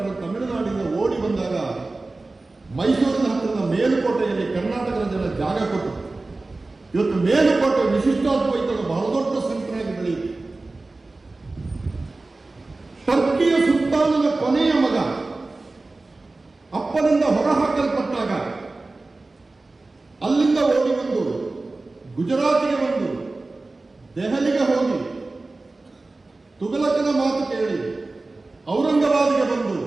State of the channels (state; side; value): quieter; left; 3.3 dB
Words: ತಮಿಳುನಾಡಿಂದ ಓಡಿ ಬಂದಾಗ ಮೈಸೂರಿನ ಹತ್ತಿರದ ಮೇಲುಕೋಟೆಯಲ್ಲಿ ಕರ್ನಾಟಕದ ಜನ ಜಾಗ ಕೊಟ್ಟರು. ಇವತ್ತು ಮೇಲುಕೋಟೆ ವಿಶಿಷ್ಟಾದ್ವೈತದ ಬಹಳ ದೊಡ್ಡ ಸೆಂಟರ್ ಆಗಿ ಬೆಳೆಯಿತು. ಟರ್ಕಿಯ ಸುಲ್ತಾನನ ಕೊನೆಯ ಮಗ ಅಪ್ಪನಿಂದ ಹೊರಹಾಕಲ್ಪಟ್ಟಾಗ ಅಲ್ಲಿಂದ ಓಡಿ ಬಂದು ಗುಜರಾತಿಗೆ ಬಂದು ದೆಹಲಿಗೆ ಹೋಗಿ ತುಘಲಕನ ಮಾತು ಕೇಳಿ ಔರಂಗಾಬಾದ್ಗೆ ಬಂದು